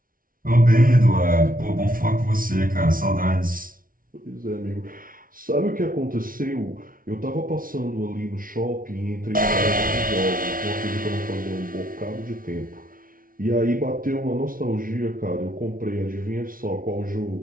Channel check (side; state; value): left; late; 0.41 ms